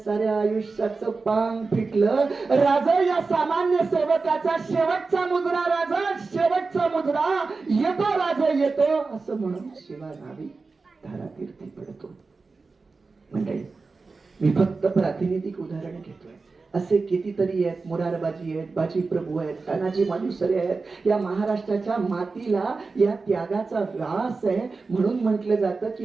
आयुष्याचं पांग फिटलं. राजा या सामान्य सेवकाचा शेवटचा मुजरा, राजा शेवटचा मुजरा येतो, राजा येतो असं म्हणून शिवनावी धारातीर्थी पडतो. म्हणजे मी फक्त प्रातिनिधिक उदाहरण घेतोय. असे कितीतरी आहेत. मुरारबाजी आहेत, बाजी प्रभू आहेत, तानाजी मालुसरे आहेत. या महाराष्ट्राच्या मातीला या त्यागाचा व्यास आहे. म्हणून म्हटलं जातं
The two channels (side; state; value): left; quieter; 4.1 dB